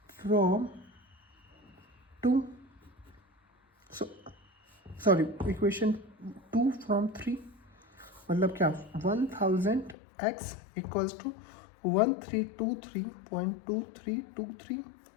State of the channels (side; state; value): right; drops out; at 10.0 s